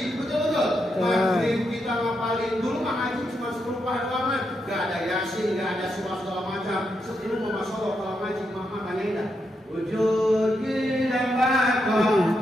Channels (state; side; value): normal; both; correlation 0.82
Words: betul-betul. Maghrib kita ngapalin dulu, ngaji cuma 10 halaman, gak ada yasin, gak ada surah segala macam. Sebelum masya Allah kalau ngaji, mama tanya indah. Wujud kita bakal,